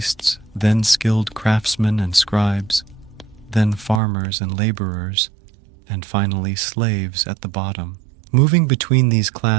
then skilled craftsmen and scribes, then farmers and laborers, and finally slaves at the bottom. Moving between these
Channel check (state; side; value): drops out; left; at 4.0 s